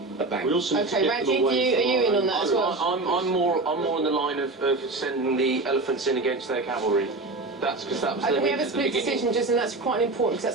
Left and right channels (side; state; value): left; quieter; 3.2 dB